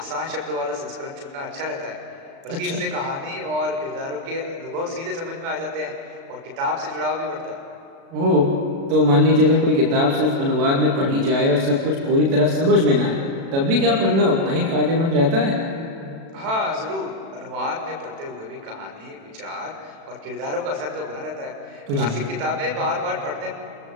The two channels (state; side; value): late; left; 36 ms